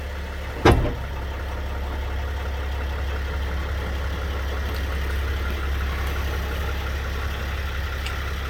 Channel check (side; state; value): both; identical; correlation 1.00